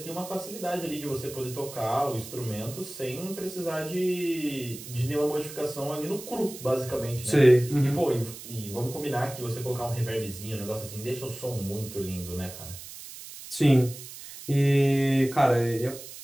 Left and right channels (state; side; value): noise; right; hiss, 13 dB below the sound